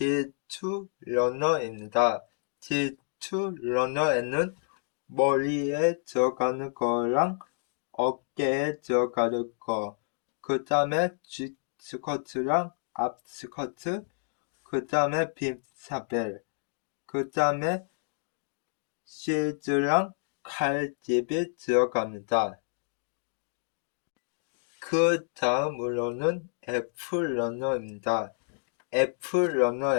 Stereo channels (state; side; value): silent; right; digital silence